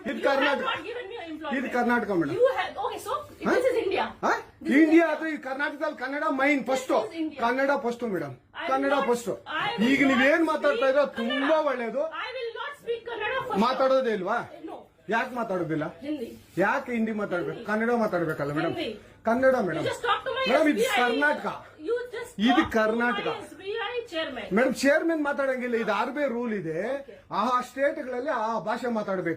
ಇದು ಕರ್ನಾಟಕ, ಇದು ಕರ್ನಾಟಕ ಮೇಡಮ್. ಇಂಡಿಯಾ ಅದು ಈ ಕರ್ನಾಟಕದಲ್ಲಿ Kannada main first, Kannada first madam, Kannada first. ಈಗ ನೀವೇನ್ ಮಾತಾಡ್ತಾ ಇರೋ ತುಂಬಾ ಒಳ್ಳೇದು. ಮಾತಾಡೋದೇ ಇಲ್ವಾ? ಯಾಕೆ ಮಾತಾಡೋದಿಲ್ಲ? ಯಾಕೆ ಹಿಂದಿ ಮಾತಾಡ್ಬೇಕು? ಕನ್ನಡ ಮಾತಾಡ್ಬೇಕಲ್ಲ ಮೇಡಮ್? ಕನ್ನಡ ಮೇಡಮ್. ಮೇಡಮ್ ಇದು ಕರ್ನಾಟಕ, ಇದು ಕರ್ನಾಟಕ ಮೇಡಮ್. ಚೇರ್ಮನ್ ಮಾತಾಡಂಗಿಲ್ಲ, ಇದು ಆರ್ಬಿ ರೂಲ್ ಇದೆ. ಆ ಸ್ಟೇಟ್ಗಳಲ್ಲಿ ಆ ಭಾಷೆ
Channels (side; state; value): both; identical; correlation 1.00